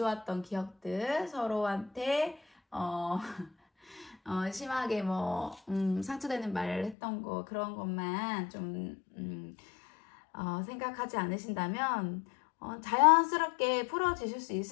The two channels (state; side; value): drops out; right; at 7.0 s